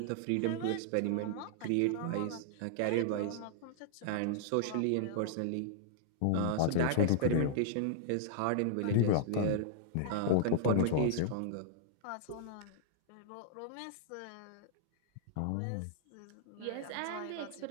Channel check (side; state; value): both; different; correlation -0.01